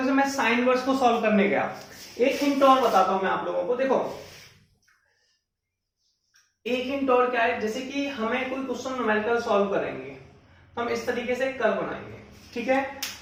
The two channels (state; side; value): identical; both; correlation 1.00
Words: से, मैं साइन इनवर्स को सॉल्व करने गया, एक हिंट और बताता हूं मैं आप लोगों को। देखो एक हिंट और क्या है, जैसे कि हमें कोई क्वेश्चन न्यूमेरिकल सॉल्व करेंगे, हम इस तरीके से कर्व बनाएंगे, ठीक है।